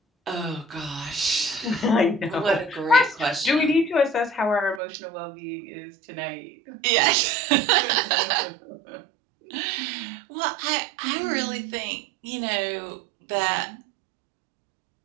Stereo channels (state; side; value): drops out; left; at 4.8 s